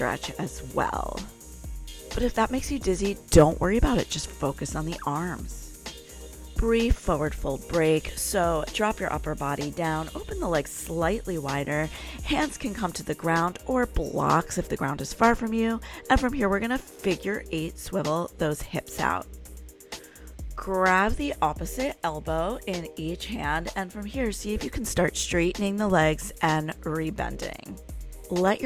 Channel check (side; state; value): both; identical; correlation 1.00